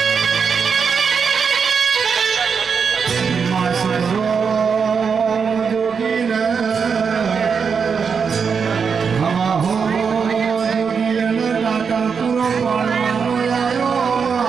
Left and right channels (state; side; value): quieter; left; 6.1 dB